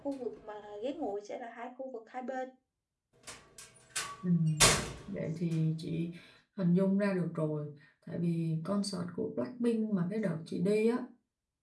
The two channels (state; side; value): identical; both; correlation 1.00